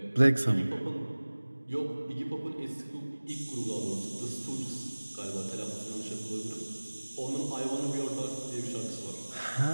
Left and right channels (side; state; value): both; inverted; correlation -1.00